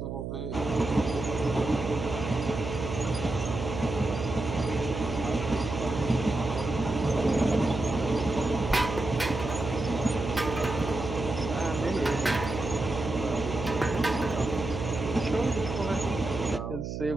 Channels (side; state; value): right; noise; hum, 5 dB below the sound